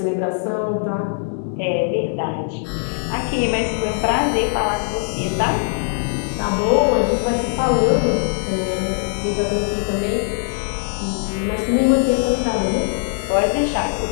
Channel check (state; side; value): silent; right; digital silence